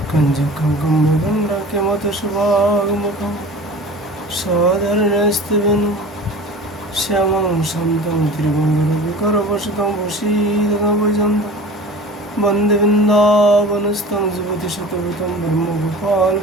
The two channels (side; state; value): both; normal; correlation 0.39